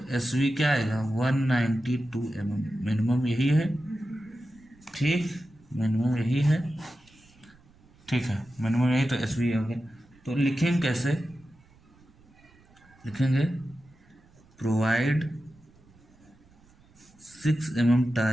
SV क्या आएगा, 192 mm, मिनिमम यही है। ठीक, मिनिमम यही है। ठीक है, मिनिमम यही, तो SV हो गया। तो लिखेंगे कैसे, लिखेंगे प्रोवाइड 6 mm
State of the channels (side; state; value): right; noise; rumble, 28 dB below the sound